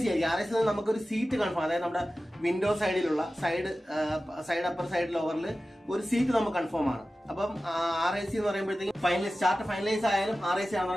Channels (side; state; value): both; normal; correlation 0.95